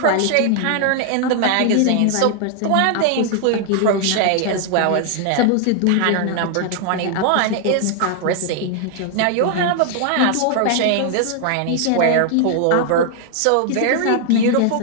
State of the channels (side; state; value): both; different; correlation 0.00